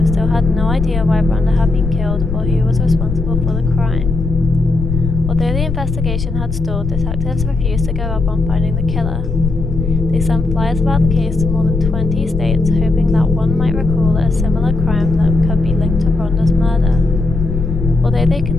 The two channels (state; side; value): noise; left; rumble, 3 dB below the sound